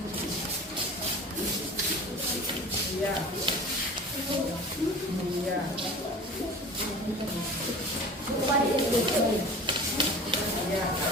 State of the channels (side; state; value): both; normal; correlation 0.39